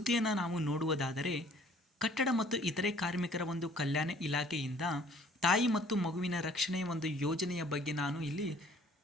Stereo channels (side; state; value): both; normal; correlation 0.56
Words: ನಾವು ನೋಡುವುದಾದರೆ, ಕಟ್ಟಡ ಮತ್ತು ಇತರೆ ಕಾರ್ಮಿಕರ ಒಂದು ಕಲ್ಯಾಣ ಇಲಾಖೆಯಿಂದ ತಾಯಿ ಮತ್ತು ಮಗುವಿನ ರಕ್ಷಣೆಯ ಒಂದು ಯೋಜನೆಯ ಬಗ್ಗೆ ನಾನು ಇಲ್ಲಿ